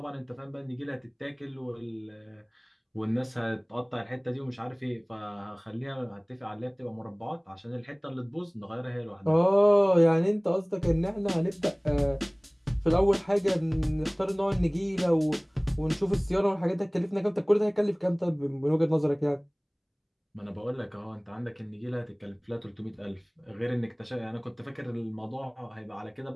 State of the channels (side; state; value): both; identical; correlation 1.00